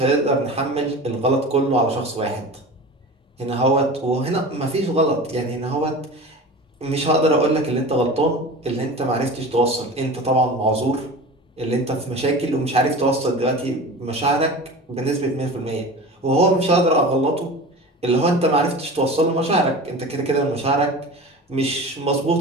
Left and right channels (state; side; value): normal; both; correlation 0.34